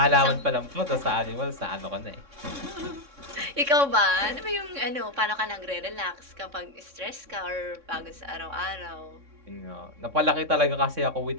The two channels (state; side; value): late; left; 3.6 ms